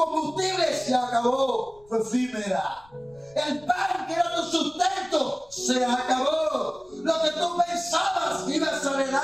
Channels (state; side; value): noise; left; rumble, 28 dB below the sound